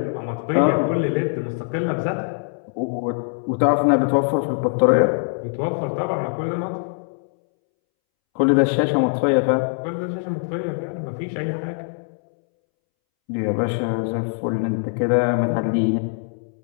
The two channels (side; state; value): right; silent; 64 dB below the other